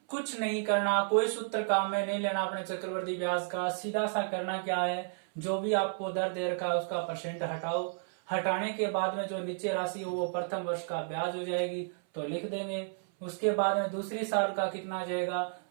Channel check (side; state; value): left; silent; 56 dB below the other